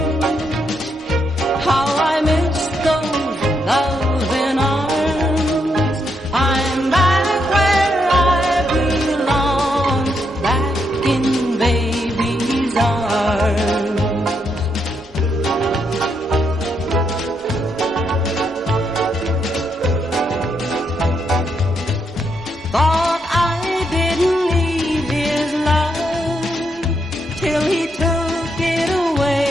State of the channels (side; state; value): both; normal; correlation 0.79